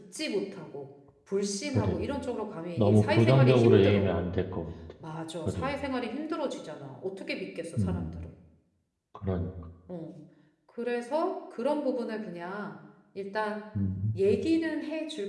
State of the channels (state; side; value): identical; both; correlation 1.00